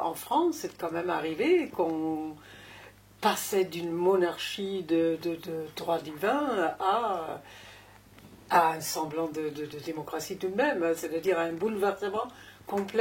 en France, c'est quand même arrivé qu'on passait d'une monarchie de droit divin à un semblant de démocratie tout de même, c'est-à-dire à un bouleversement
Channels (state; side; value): identical; both; correlation 1.00